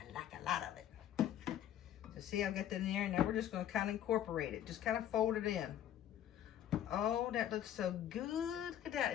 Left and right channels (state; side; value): quieter; right; 11.1 dB